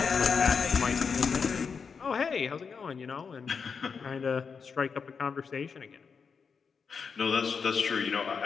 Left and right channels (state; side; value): quieter; right; 5.8 dB